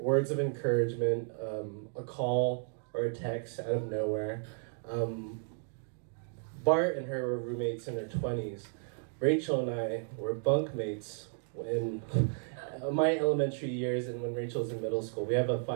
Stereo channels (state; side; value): silent; left; digital silence